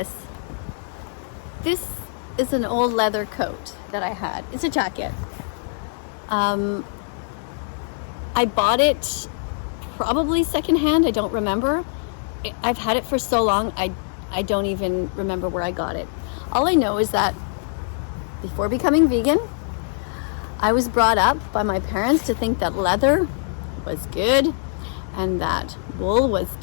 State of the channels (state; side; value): silent; right; digital silence